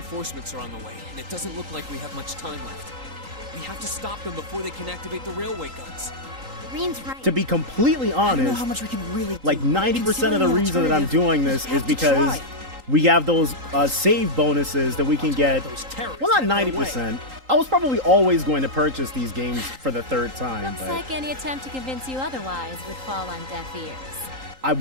are on the way, and it doesn't look like we have much time left. We have to stop them before they can activate the railway guns. Green's right. To be completely I don't know honest, how much we can really like do. 90% of the reason that I'm doing this is because we have those save bonuses that we can get. Well, not 90%. I was probably always going to purchase these games for the third time, Looks but like any attempt to convince you otherwise would fall on deaf ears. I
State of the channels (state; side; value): late; left; 3.8 ms